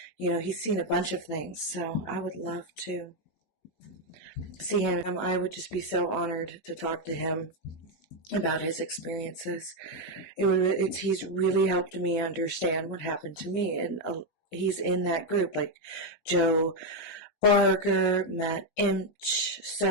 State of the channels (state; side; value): late; right; 19 ms